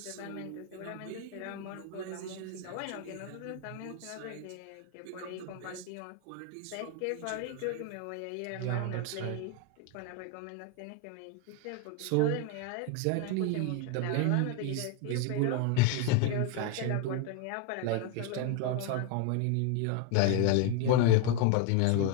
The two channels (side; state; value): both; different; correlation 0.01